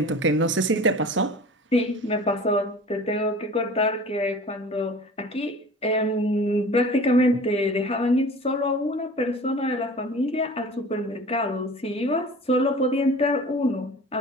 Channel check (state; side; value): normal; both; correlation 0.41